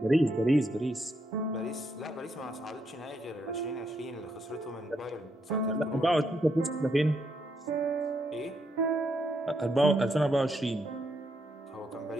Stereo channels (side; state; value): both; normal; correlation 0.78